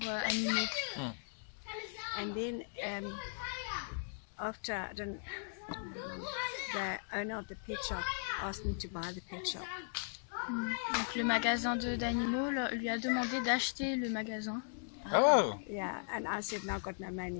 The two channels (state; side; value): silent; right; digital silence